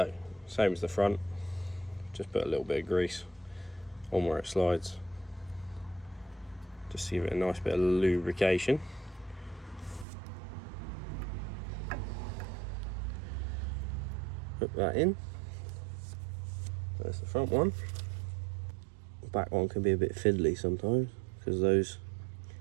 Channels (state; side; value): drops out; left; at 10.1 s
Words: same as the front, just put a little bit of grease on where it slides, just to give it a nice bit of lubrication. Put that in. There's the front one. The back one can be a bit fiddly sometimes because those